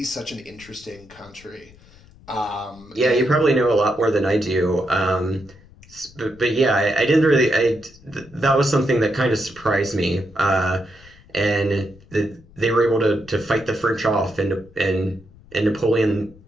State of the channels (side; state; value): left; noise; rumble, 24 dB below the sound